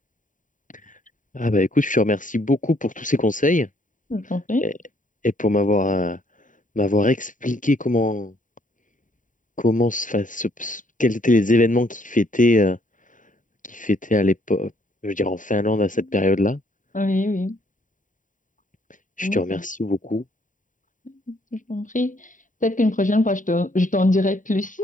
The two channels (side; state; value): right; late; 0.38 ms